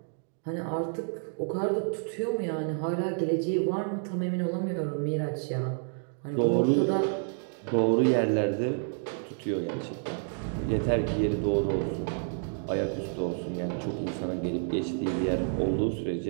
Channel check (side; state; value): left; silent; digital silence